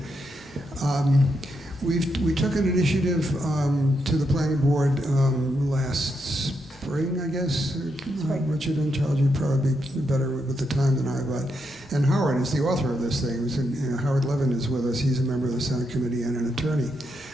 We took an initiative to the planning board last spring, I guess. Richard and Charles, you'd probably be better with the time than I, but. And Howard is the author of this thing. Howard Levin is with us. He's a member of the Senate Committee and an attorney.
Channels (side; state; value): both; normal; correlation 0.82